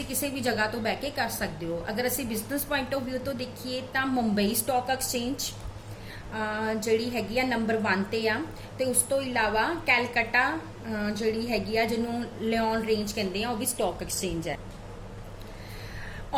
किसी भी जगह तो बह के कर सकते हो। अगर असीं बिजनेस पॉइंट ऑफ व्यू तो देखिए तो मुंबई स्टॉक एक्सचेंज जिहड़ी हैगी आ नंबर 1 ते आ, ते उस तो इलावा कैलकटा जिहड़ी हैगी आ जिन्हों लियोन रेंज कहंदे आ, वो भी स्टॉक एक्सचेंज है।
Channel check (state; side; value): identical; both; correlation 1.00